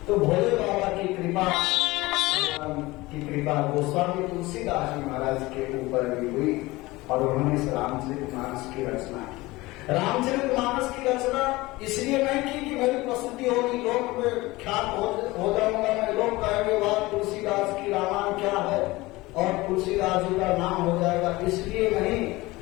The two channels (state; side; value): quieter; right; 20.5 dB